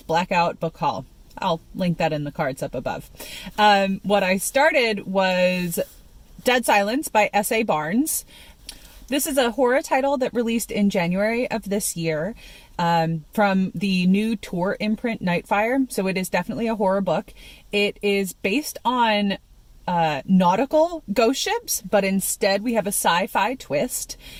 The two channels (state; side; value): identical; both; correlation 1.00